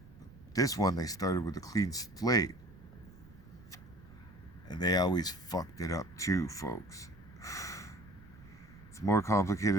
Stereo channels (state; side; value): noise; right; rumble, 21 dB below the sound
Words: This one, they started with a clean slate, and they always fucked it up too, folks. It's more